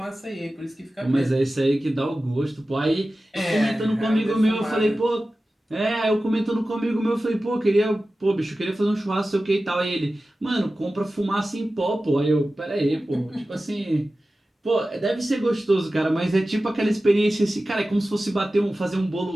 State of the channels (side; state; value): both; normal; correlation 0.95